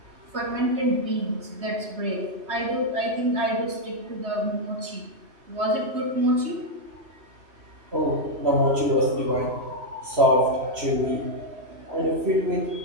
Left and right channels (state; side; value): late; left; 3.2 ms